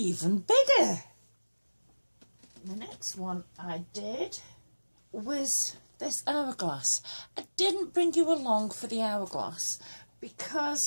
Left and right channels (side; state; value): both; inverted; correlation -1.00